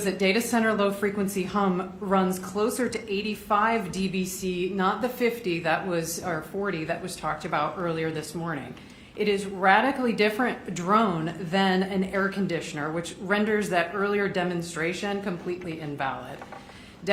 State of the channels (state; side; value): identical; both; correlation 1.00